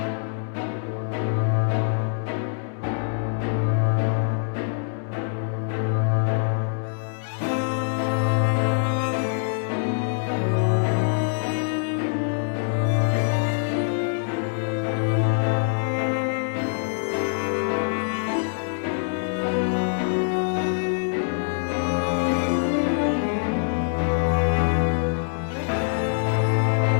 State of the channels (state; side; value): silent; right; digital silence